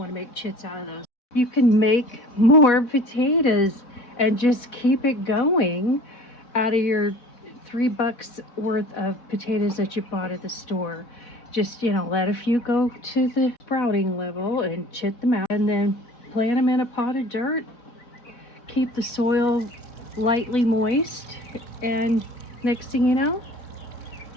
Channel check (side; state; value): right; late; 4.1 ms